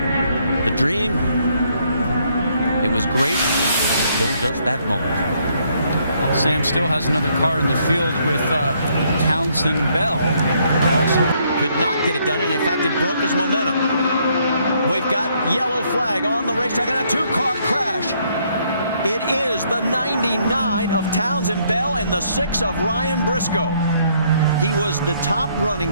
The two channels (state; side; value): inverted; both; correlation -0.70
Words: The dream, it was great until just that moment. Well, Sam still has another car in the field with Townsend Bell. Also could not get it done, and in fact, it broke his momentum. We've got yellow flag on the racetrack and a 2-car crash. It is the 99 of Townsend Bell and the 6 of Ryan Briscoe. He was the top running